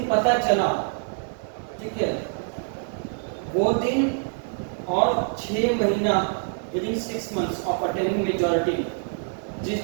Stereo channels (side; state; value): left; silent; 60 dB below the other